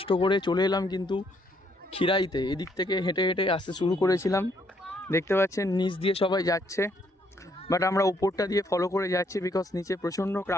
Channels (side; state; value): both; normal; correlation 0.71